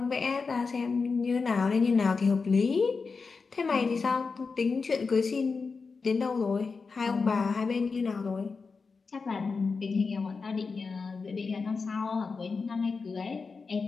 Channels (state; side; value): quieter; right; 4.7 dB